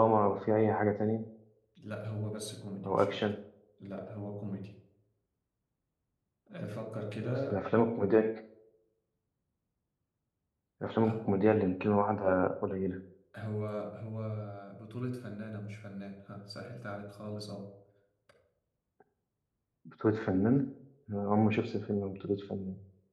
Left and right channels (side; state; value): both; identical; correlation 1.00